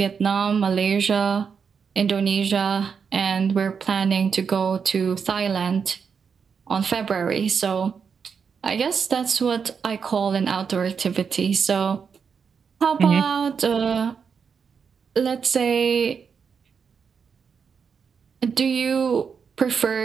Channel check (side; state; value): left; quieter; 6.2 dB